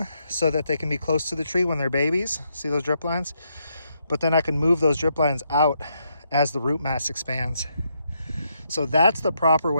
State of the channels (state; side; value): inverted; both; correlation -0.78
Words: so that they can be close to the tree when they're babies. See those drip lines? But then I can move those drip lines out as the root mass expands. So that's the proper